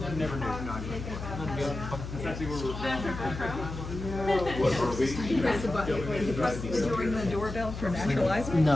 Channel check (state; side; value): noise; left; hum, 8 dB below the sound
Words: Never knew. press the button. Did you ring the doorbell for naturalizer?